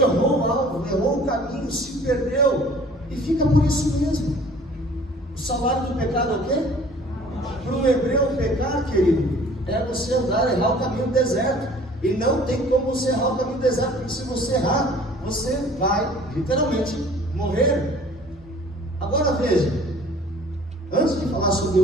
o alvo, errou o caminho, se perdeu, e fica por isso mesmo. O salário do pecado é o quê? Para o hebreu pecar, querido, é você andar, errar o caminho do deserto. E não tem como você errar o caminho do deserto, porque se você errar, você vai literalmente morrer. Agora veja, antes de falar sobre o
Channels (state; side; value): normal; both; correlation 0.51